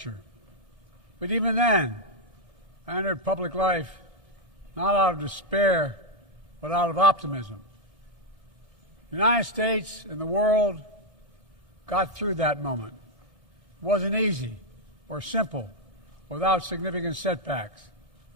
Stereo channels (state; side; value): late; right; 1.7 ms